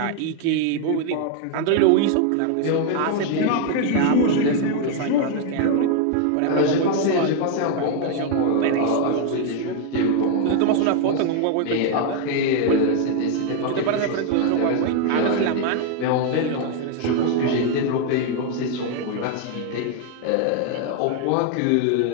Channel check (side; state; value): both; different; correlation 0.00